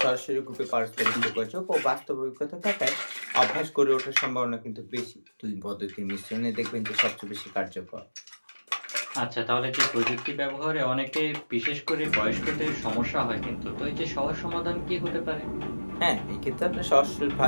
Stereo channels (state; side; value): inverted; both; correlation -1.00